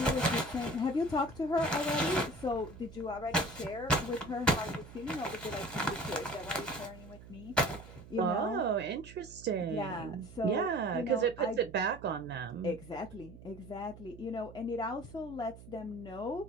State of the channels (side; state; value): right; noise; hum, 17 dB below the sound